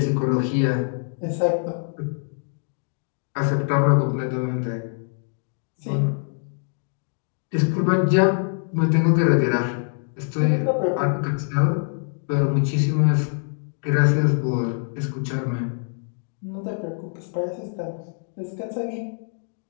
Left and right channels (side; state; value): right; silent; 62 dB below the other